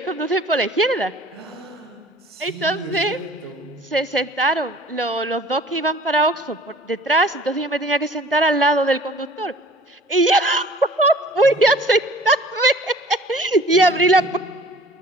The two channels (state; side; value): normal; both; correlation 0.49